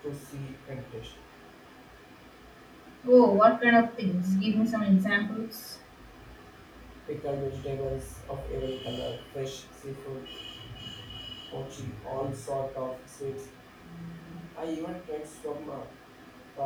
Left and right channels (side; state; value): both; identical; correlation 1.00